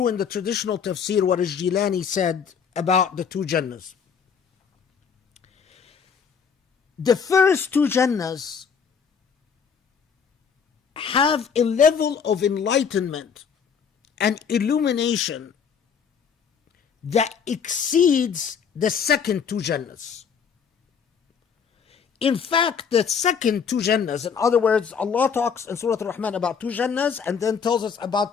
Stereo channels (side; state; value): right; quieter; 6.7 dB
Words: in the traditional tafsir what Al-Jilani said about the two Jannahs. The first two Jannahs have a level of enlightenment and illumination that exceeds the second two Jannahs. In fact, the second two Jannahs, in other words, Allah talks in Surah Al-Rahman about two Jannahs and then tells us